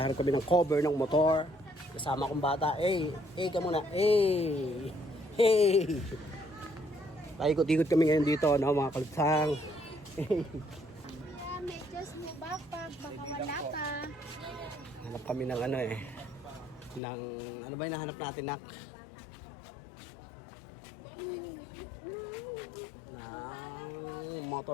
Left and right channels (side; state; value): right; drops out; at 17.0 s